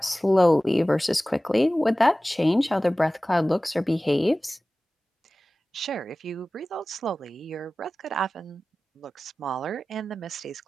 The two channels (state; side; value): normal; both; correlation 0.97